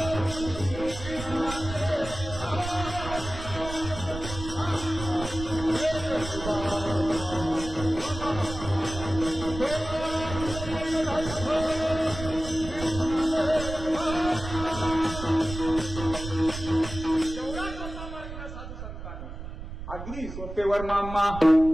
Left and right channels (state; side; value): noise; right; rumble, 9 dB below the sound